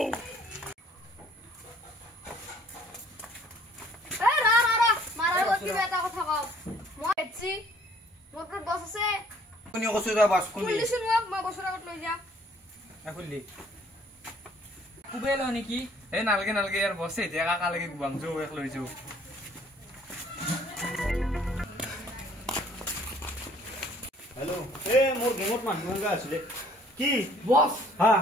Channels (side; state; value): both; normal; correlation 0.59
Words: এ রা মারা গতি বেটা কথা কও মই এছি মোর তো বস আছে কোনি কসু দা বাস কোনি পুলিশ মোক মই বছৰ আগত লৈ যা খুললি কুবে ল নেকি এই নালগে নালগে ইয়াৰ বছে এতিয়া কাকালৈকে গুৱাম যাওঁ এক লৈ যাওঁ হেল্ল' এ মোৰ গেমত মানুহ গা আছিলে কি বস হা